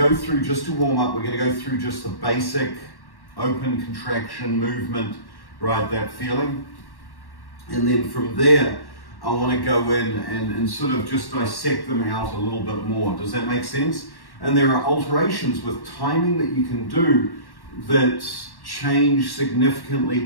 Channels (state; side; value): late; right; 1.1 ms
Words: through, just to warm up, we're going to go through just the basic open contraction movement, right? That feeling. And then from there, I want to go in and sort of just dissect them out a little bit more. Does that make sense? And there are alterations with timing that you can do that change significantly